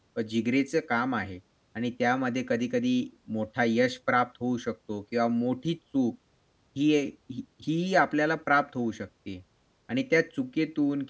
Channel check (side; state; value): both; identical; correlation 1.00